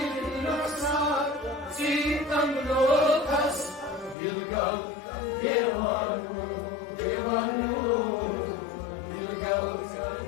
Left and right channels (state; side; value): drops out; right; at 4.2 s